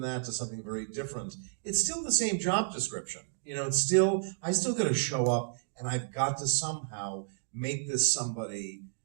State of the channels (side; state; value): left; silent; digital silence